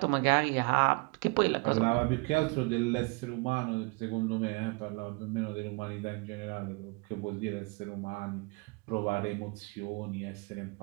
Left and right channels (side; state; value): left; quieter; 29.5 dB